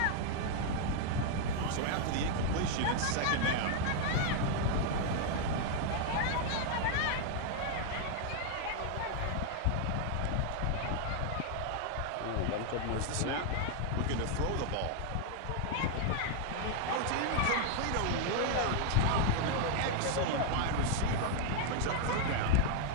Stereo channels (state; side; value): different; both; correlation 0.00